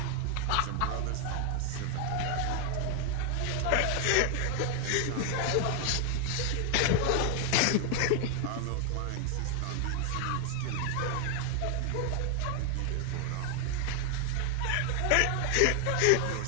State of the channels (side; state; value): both; different; correlation 0.00